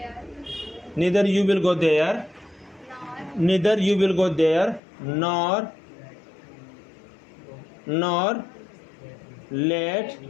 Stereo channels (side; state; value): right; drops out; at 4.8 s